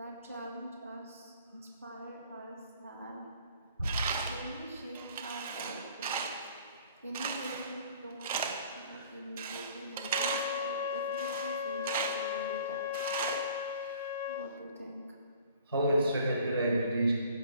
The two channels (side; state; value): both; inverted; correlation -0.52